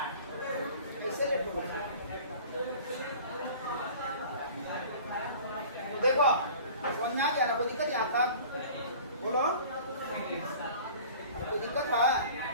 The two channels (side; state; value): both; inverted; correlation -0.44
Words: ऐसे लेट हो। देखो समझ में आ गया ना, कोई दिक्कत यहाँ तक बोलो, कोई दिक्कत है